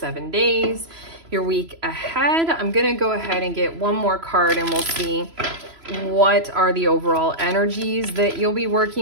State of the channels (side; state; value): left; late; 3.0 ms